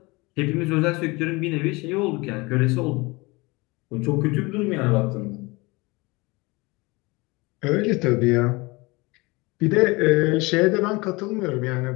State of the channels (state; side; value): quieter; right; 24.5 dB